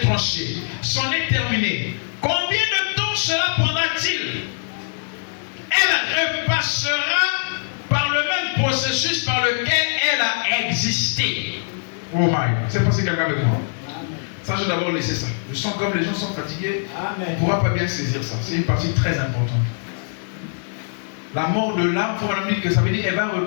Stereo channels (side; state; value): right; silent; digital silence